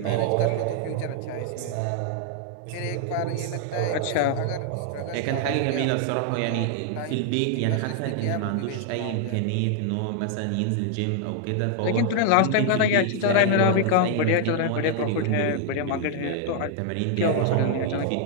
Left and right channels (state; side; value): different; both; correlation 0.00